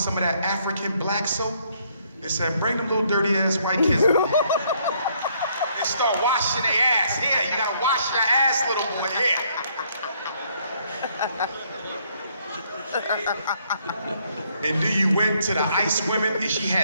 of that African black soap and said, bring them little dirty ass white kids. And start washing their ass. Here, you gotta wash your ass, little boy, here. And then you went to the ice women and she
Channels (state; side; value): inverted; both; correlation -0.68